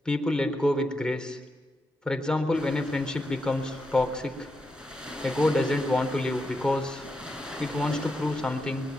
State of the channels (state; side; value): normal; both; correlation 0.85